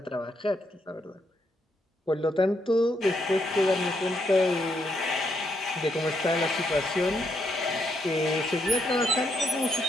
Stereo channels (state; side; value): normal; both; correlation 0.77